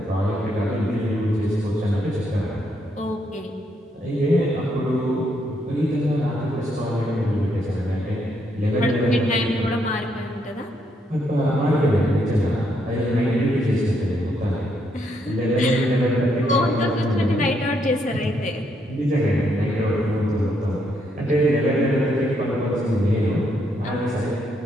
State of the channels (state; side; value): normal; both; correlation 0.75